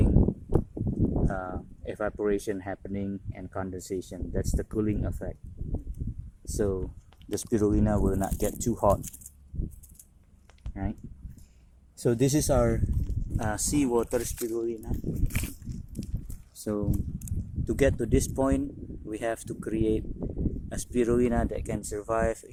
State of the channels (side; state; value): both; identical; correlation 1.00